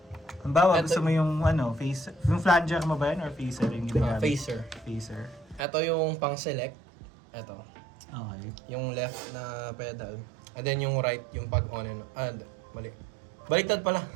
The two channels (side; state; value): left; drops out; at 5.6 s